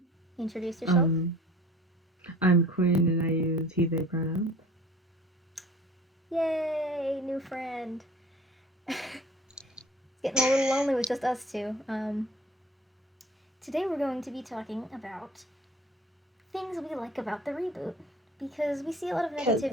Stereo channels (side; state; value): both; normal; correlation 0.46